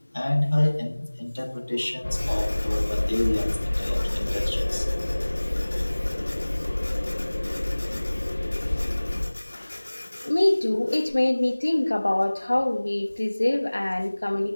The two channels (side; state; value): both; inverted; correlation -1.00